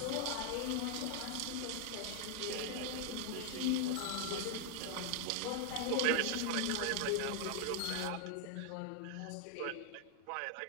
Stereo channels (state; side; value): different; both; correlation 0.00